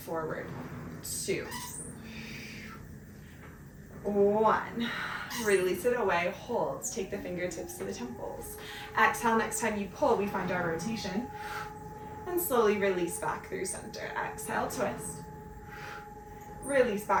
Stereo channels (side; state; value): both; identical; correlation 1.00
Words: 2, 1. Release it away, hold. Take the fingertips to the temples. Exhale, next time you pull, we find our rotation. And slowly release back through center. Exhale, twist. Release